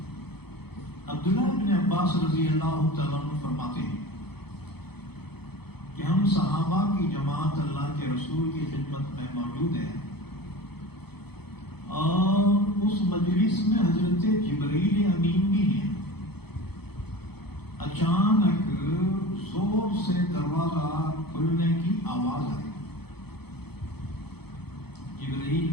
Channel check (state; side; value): late; right; 0.97 ms